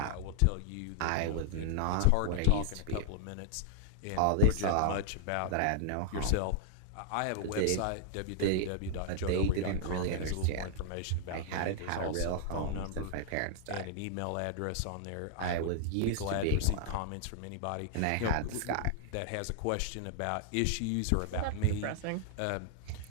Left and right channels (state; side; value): different; both; correlation -0.01